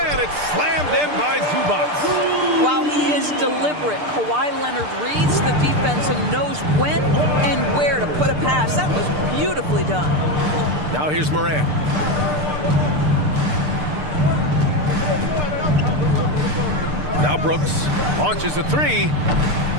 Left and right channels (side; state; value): left; late; 6.7 ms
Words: it's slammed in by Zubac. While he is deliberate, Kawhi Leonard reads the defense and knows when and where to put a pass. That was beautifully done. Now here's Moran. Now Brooks launches a three.